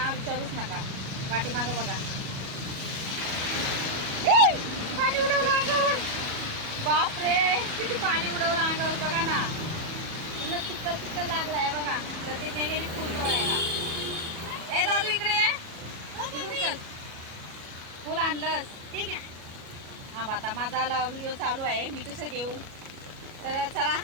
विचारूच नका. पाठीमागं बघा, पाणी उडवलं अंगावर. बापरे, किती पाणी उडवलं अंगावर बघा ना. पूर्ण चिखल चिखल लागलाय बघा. प्रतिज्ञा गेली फुल तोडायला. ए दादू इकडे ये, इकडून चल. फुल आणलंस? ठीक आहे. हां, आता माझा व्हिडिओ चालू आहे, मी कसं घेऊ. तर चला,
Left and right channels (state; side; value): late; left; 37 ms